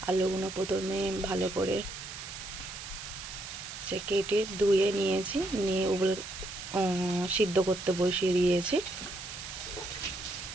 আলুগুলো প্রথমে ভালো করে কেটে ধুয়ে নিয়েছি, নিয়ে ওগুলো সিদ্ধ করতে বসিয়ে দিয়েছি।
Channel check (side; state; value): right; noise; hiss, 10 dB below the sound